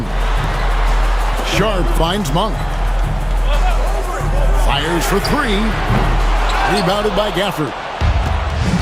Sharp finds Monk. Fires for 3. Rebounded by Gafford.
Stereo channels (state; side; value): identical; both; correlation 1.00